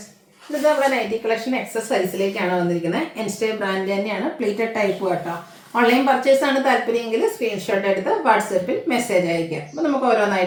ഇത് നമ്മുടെ nightie collection excess സൈസിലേക്കാണ് വന്നിരിക്കുന്നത്. എൻസ്റ്റേ ബ്രാൻഡ് തന്നെയാണ്, പ്ലീറ്റഡ് ടൈപ്പ് കേട്ടോ. ഓൺലൈൻ പർച്ചേസ് ആണ് താല്പര്യമെങ്കിൽ സ്ക്രീൻഷോട്ട് എടുത്ത് വാട്സപ്പിൽ മെസ്സേജ് അയക്കുക. അപ്പോൾ നമുക്ക്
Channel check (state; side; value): identical; both; correlation 1.00